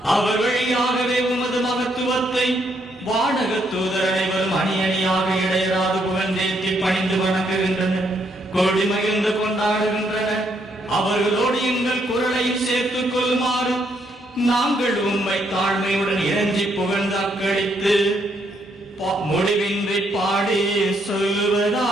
அவர் வழியாகவே உமது மகத்துவத்தை வானக தூதர் அனைவரும் அணி அணியாக இடையராது புகழ்ந்தேற்றி பணிந்து வணங்குகின்றனர், கோடி மகிழ்ந்து கொண்டாடுகின்றனர். அவர்களோடு எங்கள் குரலையும் சேர்த்துக் கொள்ளுமாறு நாங்கள் உம்மை தாழ்மையுடன் இறஞ்சி புகழ்ந்து அக்களித்து முடிவின்றி பாடி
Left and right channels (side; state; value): both; normal; correlation 0.74